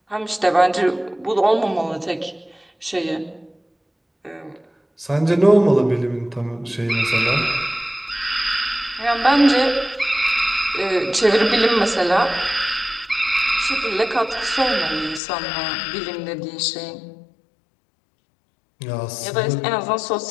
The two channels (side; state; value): right; drops out; at 15.2 s